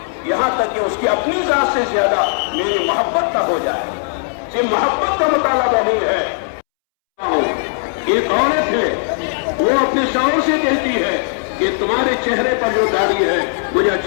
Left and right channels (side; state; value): right; silent; 68 dB below the other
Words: یہاں تک کہ اس کی اپنی ذات سے زیادہ میری محبت تک ہو جائے. یہ محبت کا مطالبہ نہیں ہے. ایک عورت ہے، وہ اپنے شوہر سے کہتی ہے کہ تمہارے چہرے پر جو داڑھی ہے مجھے